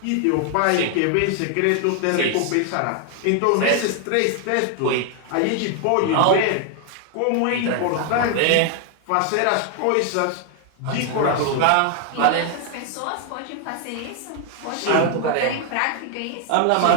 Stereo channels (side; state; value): both; different; correlation 0.00